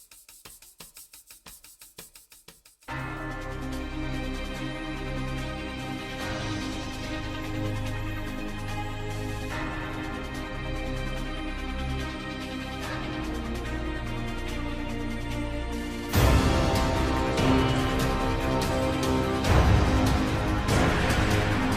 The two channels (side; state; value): both; identical; correlation 1.00